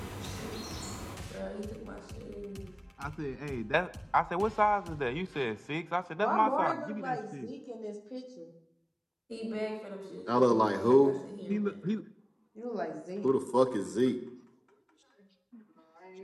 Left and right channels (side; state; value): both; identical; correlation 1.00